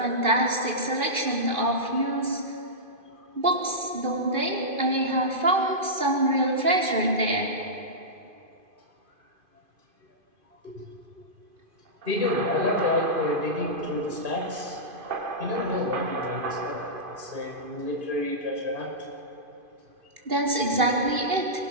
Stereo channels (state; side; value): late; left; 2.5 ms